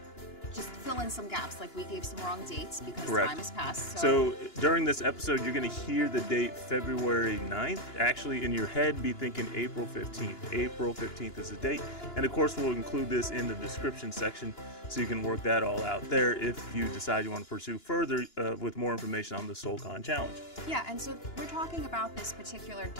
just fill in some gaps, like we gave some wrong dates because Correct. Time has passed. So during this episode, you're going to hear the date February 9th. Actually, in your head, be thinking April 15th. April 15th is the date. And of course, we'll include this in the description section so you can work that all out there if you decide you want to pursue further with more information on the SoulCon Challenge. Yeah, and so we're talking about this particular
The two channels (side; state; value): right; late; 2.9 ms